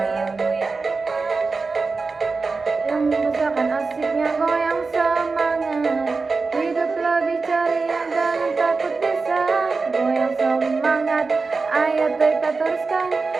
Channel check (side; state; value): left; quieter; 4.2 dB